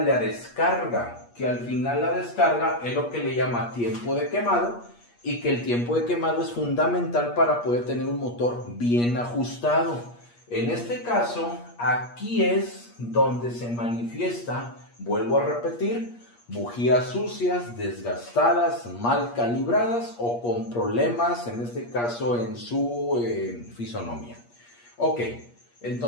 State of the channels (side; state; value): right; late; 8.5 ms